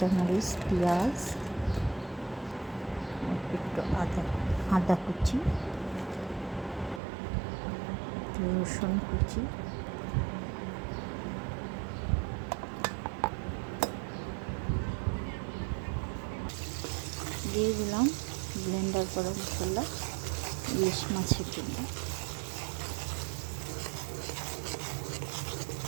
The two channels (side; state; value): left; drops out; at 7.0 s